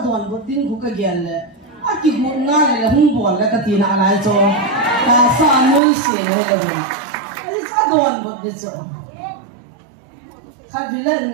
đoàn bút tin cũng cái gì lệ, à cái bút ngay là hung bol là cái tin nào lại cho, ta xa nuôi xia này cái gì, cái sao đoàn bút đi cho, khác vì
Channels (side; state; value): left; drops out; at 5.8 s